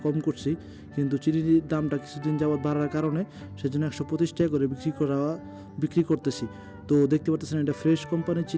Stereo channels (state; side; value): identical; both; correlation 1.00